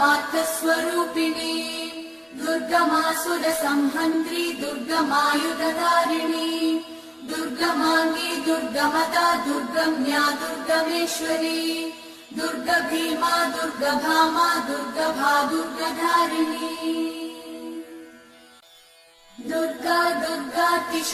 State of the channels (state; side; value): identical; both; correlation 1.00